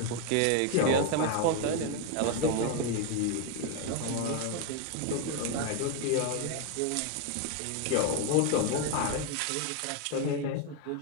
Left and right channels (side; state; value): both; different; correlation 0.01